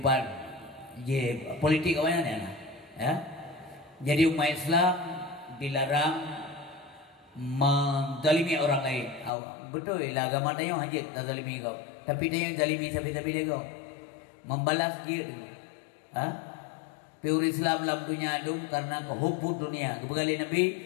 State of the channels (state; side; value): drops out; right; at 9.3 s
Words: politik awalnya ya. Jadi umat Islam dilarang menzalimi orang lain. Betul lah agama dia hajat tak zalimi kau. Tapi dia yang zalimi sampai dia kau. Membalas dia dulu. Pure Islam dalam dunia itu karena kehubung dunia. Kebegali Nabi